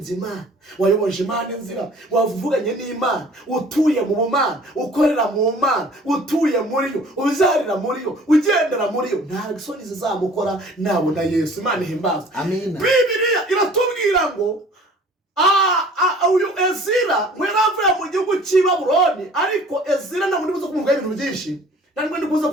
Imana, wayoboje Imana inzira, wavuganye n'Imana, utuye mu bumana, ukorera mu Mana, utuye muri yo, uzarira muri yo, ugendera muri yo, nta isoni zizamukora nabona Yesu. Imana ihimbaza. Amen. Bibiliya iratubwira ngo uyu Ezira mweravuye mu gihugu cy'i Babuloni, ariko Ezira ntabwo ndibuze kumuvuga ibintu byinshi, ntabwo ndibuze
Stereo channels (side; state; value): both; normal; correlation 0.50